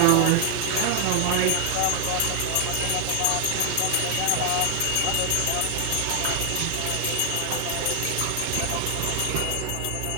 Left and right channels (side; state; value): both; different; correlation 0.00